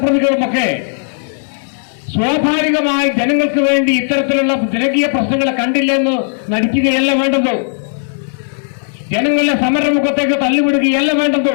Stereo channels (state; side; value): silent; right; digital silence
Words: സ്വാഭാവികമായി ജനങ്ങൾക്ക് വേണ്ടി ഇത്തരത്തിലുള്ള ജനകീയ പ്രശ്നങ്ങളെ കണ്ടില്ലെന്ന് നടിക്കുകയല്ല വേണ്ടത്. ജനങ്ങളുടെ സമരമുഖത്തേക്ക് തള്ളിവിടുകയല്ല വേണ്ടത്.